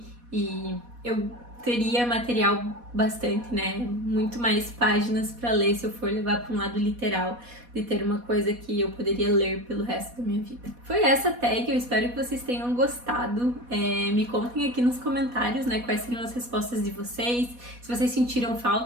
e eu teria material bastante, né? Muito mais páginas para ler se eu for levar para um lado literal, de ter uma coisa que eu poderia ler pelo resto da minha vida. Foi essa tag, eu espero que vocês tenham gostado. Me contem aqui nos comentários, né, quais seriam as respostas de vocês, se vocês sentiram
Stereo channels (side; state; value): left; late; 4.1 ms